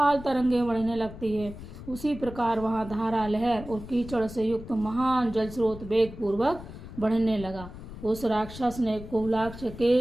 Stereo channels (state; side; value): noise; left; rumble, 13 dB below the sound